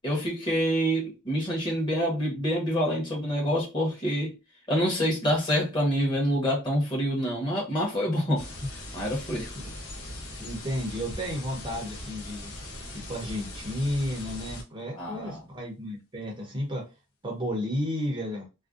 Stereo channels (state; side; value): normal; both; correlation 0.64